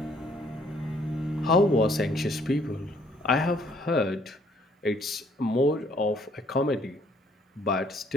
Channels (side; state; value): both; normal; correlation 0.63